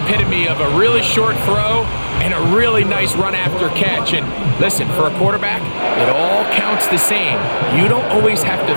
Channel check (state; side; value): inverted; both; correlation -1.00